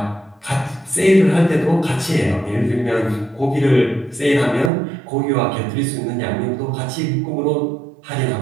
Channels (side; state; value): left; drops out; at 4.7 s